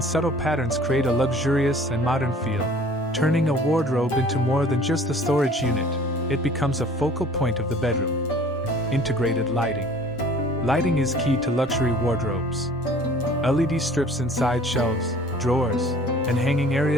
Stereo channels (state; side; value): normal; both; correlation 0.50